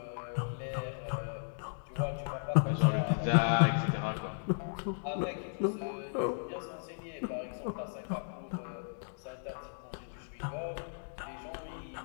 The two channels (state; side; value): silent; right; digital silence